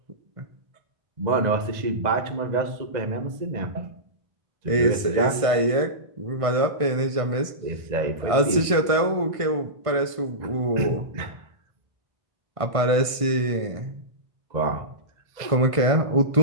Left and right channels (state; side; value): late; left; 1.5 ms